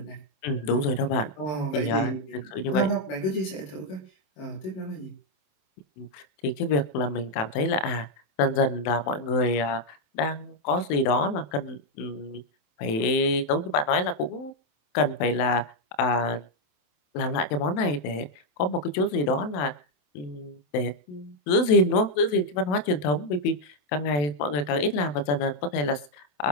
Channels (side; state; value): right; late; 27 ms